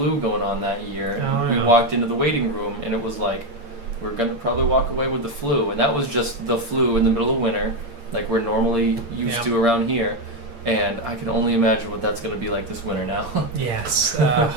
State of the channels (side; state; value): left; late; 8.7 ms